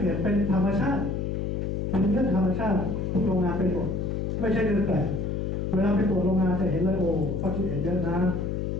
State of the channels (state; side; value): noise; left; hum, 1 dB below the sound